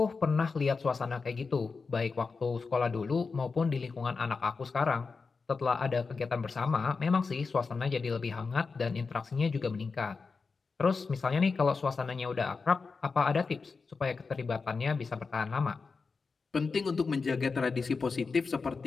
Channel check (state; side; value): quieter; right; 4.6 dB